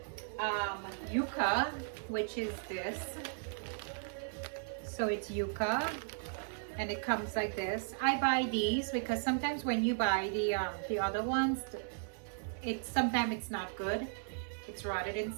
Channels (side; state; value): left; silent; digital silence